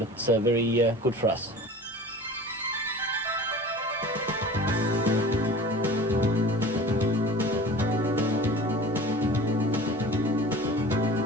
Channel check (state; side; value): normal; both; correlation 0.39